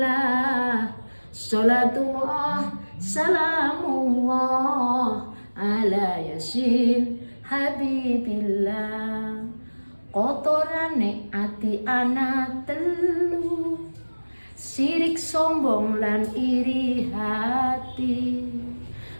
Sholatullah salamullah ala yasin habibillah. Kotorane ati ana telu, sirik sombong lan iri hati.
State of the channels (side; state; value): both; inverted; correlation -1.00